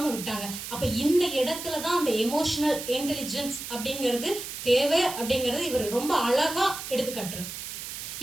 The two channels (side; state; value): right; noise; hiss, 8 dB below the sound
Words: விட்டாங்க. அப்ப இந்த இடத்துலதான் அந்த எமோஷனல் இன்டெலிஜென்ஸ் அப்படிங்கிறது தேவை அப்படிங்கறது இவர் ரொம்ப அழகா எடுத்துக்காட்டுறாரு.